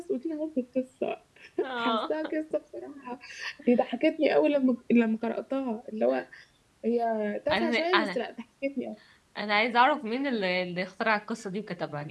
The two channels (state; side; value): identical; both; correlation 1.00